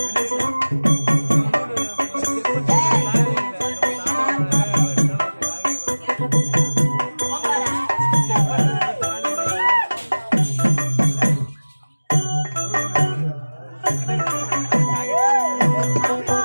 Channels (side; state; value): both; inverted; correlation -1.00